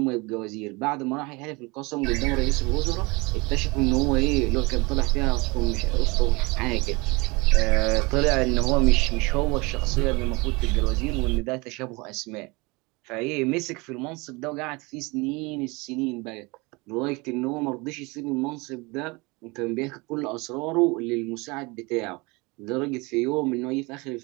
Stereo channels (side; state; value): left; quieter; 25.9 dB